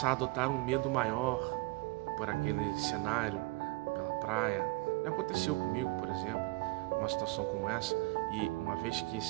a adotar um medo maior por aquele cenário, pela praia. Já aconteceu comigo, por exemplo, uma situação como essa, e uma vez que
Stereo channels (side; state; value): left; quieter; 23.5 dB